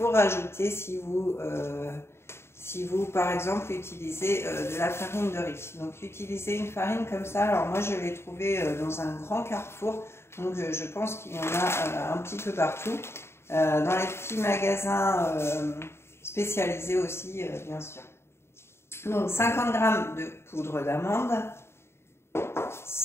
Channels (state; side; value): late; right; 0.12 ms